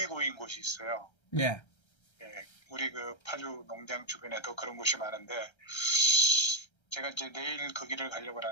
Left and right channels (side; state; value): right; late; 1.3 ms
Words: 고인 곳이 있어요. 예. 예, 우리 파주 농장 주변에도 그런 곳이 많은데 제가 이제 내일 거기를 가려고